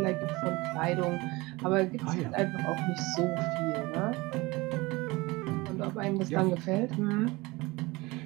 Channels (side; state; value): left; quieter; 22.6 dB